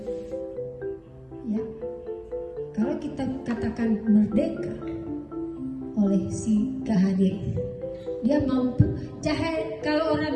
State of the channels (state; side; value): identical; both; correlation 1.00